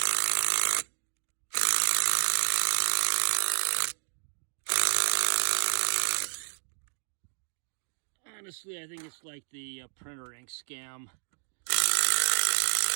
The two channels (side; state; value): left; silent; digital silence